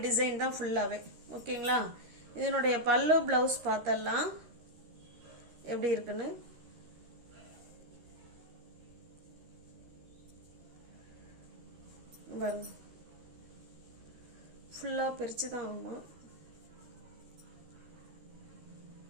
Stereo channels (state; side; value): late; left; 13 ms